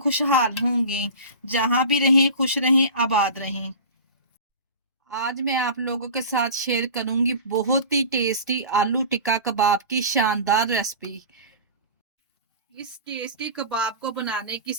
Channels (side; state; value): both; inverted; correlation -0.34